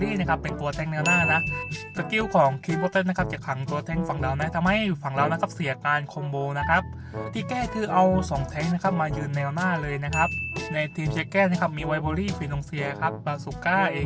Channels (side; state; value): both; identical; correlation 1.00